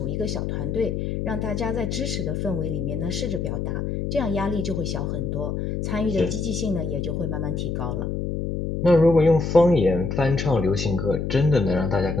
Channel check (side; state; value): left; noise; hum, 2 dB below the sound